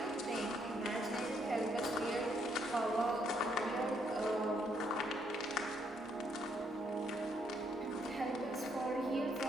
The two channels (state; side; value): normal; both; correlation 0.73